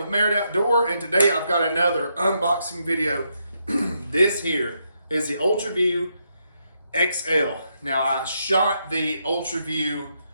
Merit Outdoor, and today I've got another unboxing video. This here is the UltraView XL. Now I shot the UltraView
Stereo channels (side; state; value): both; inverted; correlation -0.79